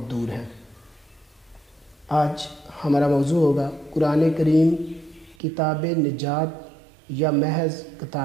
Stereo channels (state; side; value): drops out; left; at 5.4 s